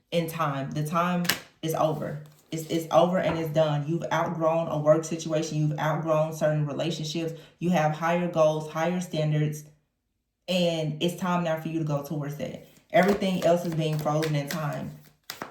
in time. The time is over. It's over and it's done. You've outgrown a work situation. You've outgrown certain relationships. You have higher goals, higher standards, and it's time now for you to go towards that. Everything else is being frozen in time.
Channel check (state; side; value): identical; both; correlation 1.00